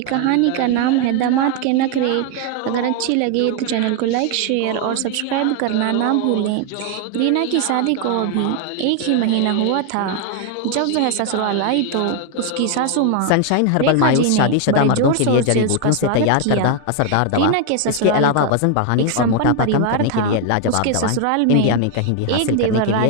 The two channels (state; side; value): different; both; correlation 0.01